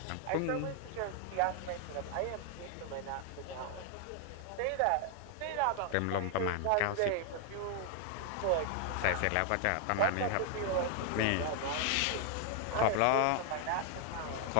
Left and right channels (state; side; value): different; both; correlation 0.00